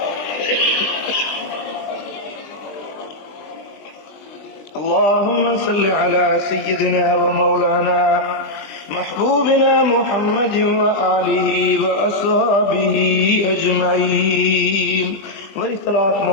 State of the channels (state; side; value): late; right; 20 ms